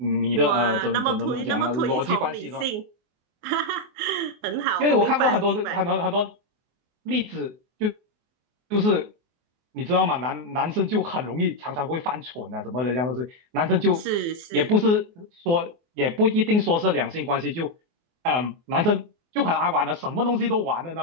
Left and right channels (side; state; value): left; late; 24 ms